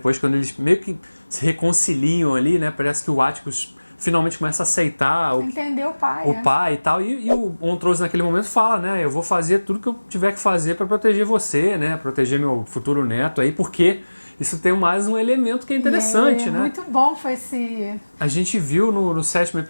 quando eles meio que se reconciliam ali, né? Parece que o Atticus finalmente começa a aceitar entender o pai e tal. E o Montrose naquele momento fala, né? Eu vou fazer tudo que eu tiver que fazer para proteger você, né? Proteger meu futuro neto aí, porque isso tem mais um elemento que é interessante, né? Muito bom foi esse... A gente viu no 7º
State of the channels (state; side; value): inverted; both; correlation -1.00